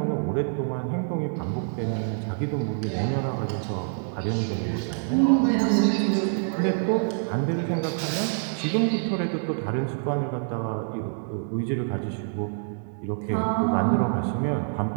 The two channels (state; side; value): silent; left; digital silence